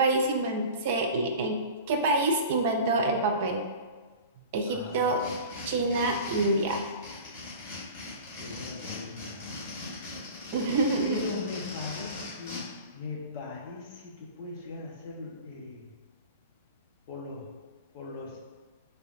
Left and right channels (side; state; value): both; inverted; correlation -0.37